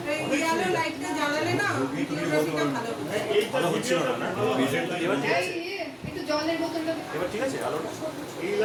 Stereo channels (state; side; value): identical; both; correlation 1.00